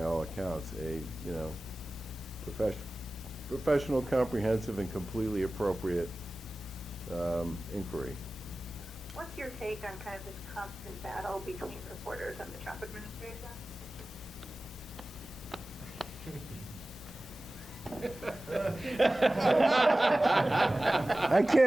all accounts, a professional, comprehensive, and completely appropriate inquiry. What's your take on kind of this constant battle between reporters and the Trump administration? I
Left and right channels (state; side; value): normal; both; correlation 0.97